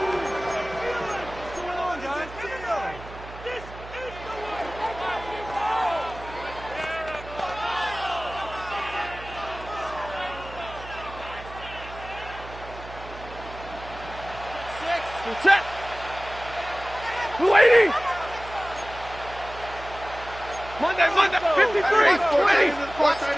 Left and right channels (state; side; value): noise; right; hum, 14 dB below the sound